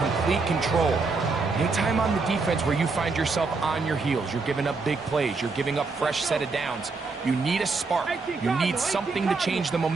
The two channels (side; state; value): left; quieter; 4.1 dB